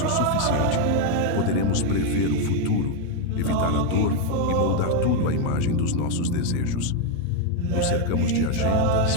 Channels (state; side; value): different; both; correlation 0.01